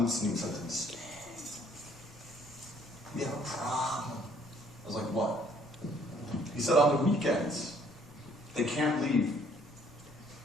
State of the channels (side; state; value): left; noise; rumble, 23 dB below the sound